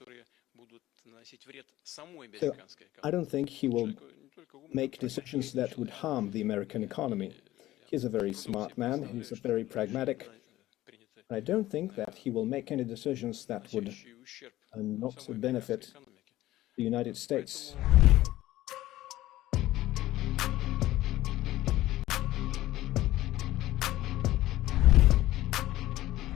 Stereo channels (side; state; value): right; quieter; 15.7 dB